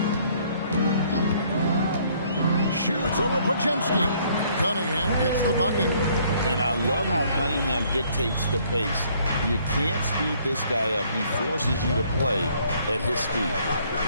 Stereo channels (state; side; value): inverted; both; correlation -0.63